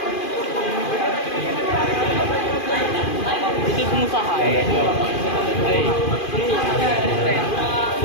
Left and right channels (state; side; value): late; right; 2.5 ms